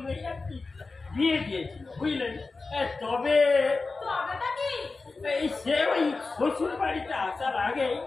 আর কি বিয়ে দিয়েছিল, বুঝলেন। তবে তবেটা কি? এই সে ওই শ্বশুর বাড়িতে আসার আগে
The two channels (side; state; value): right; quieter; 3.8 dB